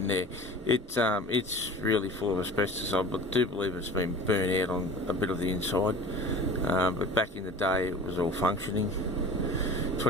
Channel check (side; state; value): both; normal; correlation 0.39